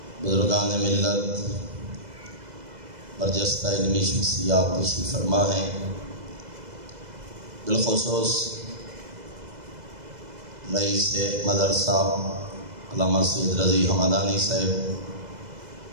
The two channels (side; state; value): left; late; 2.0 ms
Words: بزرگان ملت، برجستہ علمی شخصیات تشریف فرما ہیں، بالخصوص رئیس مدرسہ علامہ سید رضی حمدانی صاحب،